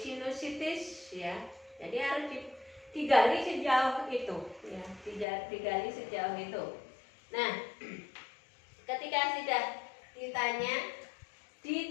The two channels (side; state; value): right; drops out; at 5.2 s